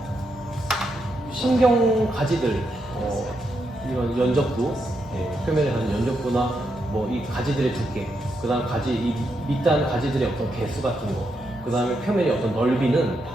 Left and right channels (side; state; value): both; normal; correlation 0.82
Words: 신경 가지들, 이런 연적부, 표면에 가는 연적부나 뭐 이 가지들의 두께, 그다음 가지 이 밑단 가지들의 어떤 개수 같은 거, 그다음에 표면의 어떤 넓이는